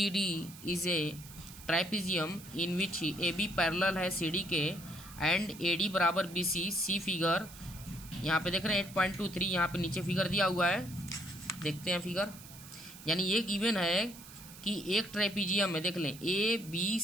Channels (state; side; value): noise; right; hiss, 17 dB below the sound